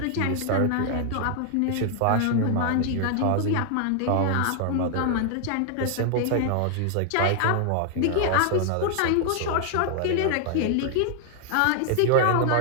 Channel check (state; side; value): different; both; correlation 0.00